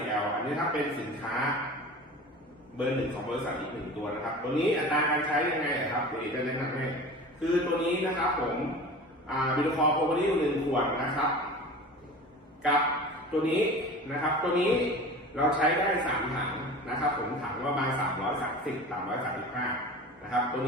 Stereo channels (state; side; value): normal; both; correlation 0.36